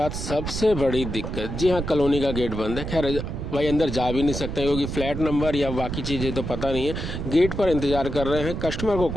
सबसे बड़ी दिक्कत। जी हाँ, कॉलोनी का गेट बंद है। खैर भाई अंदर जा भी नहीं सकते क्योंकि फ्लैट नंबर या बाकी चीज़ें तो पता नहीं है। गेट पर इंतज़ार कर रहे हैं, कस्टमर को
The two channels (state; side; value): noise; right; rumble, 5 dB below the sound